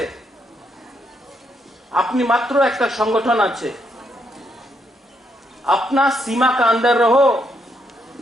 আপনি মাত্র একটা সংগঠন আছে। अपना सीमा का अंदर रहो,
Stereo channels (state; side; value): normal; both; correlation 0.76